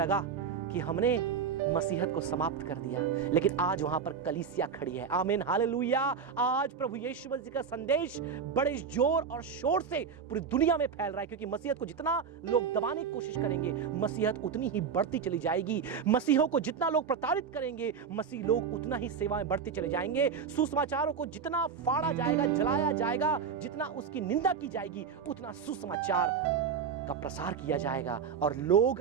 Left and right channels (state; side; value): quieter; left; 6.5 dB